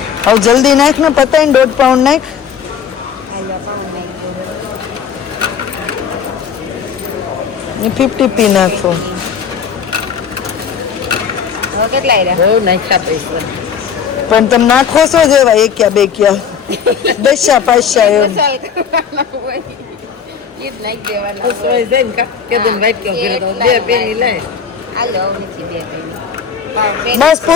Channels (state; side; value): quieter; right; 7.1 dB